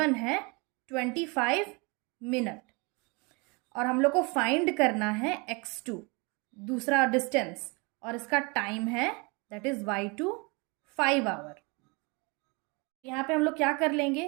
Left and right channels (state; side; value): quieter; left; 29.2 dB